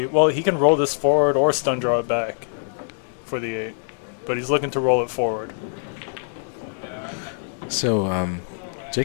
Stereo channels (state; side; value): silent; right; digital silence